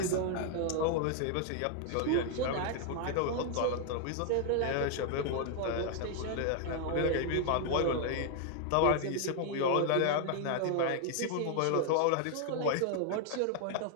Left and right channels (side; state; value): both; different; correlation 0.00